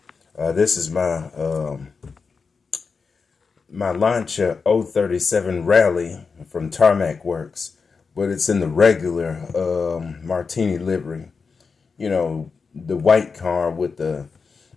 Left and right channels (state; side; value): quieter; right; 5.0 dB